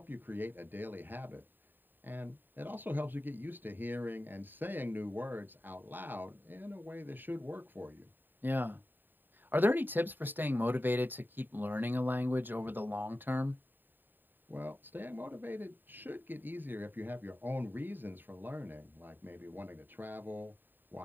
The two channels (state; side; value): late; left; 0.092 ms